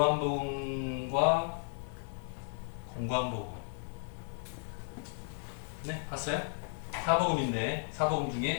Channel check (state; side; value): silent; right; 55 dB below the other